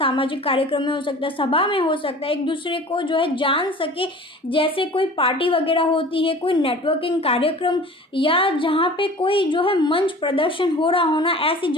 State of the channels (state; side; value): normal; both; correlation 0.42